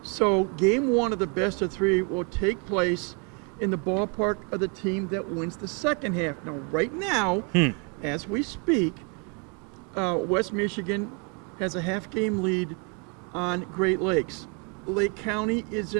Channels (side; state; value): left; quieter; 34.9 dB